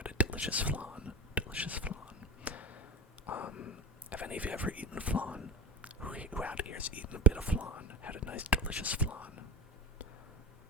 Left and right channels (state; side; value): normal; both; correlation 0.26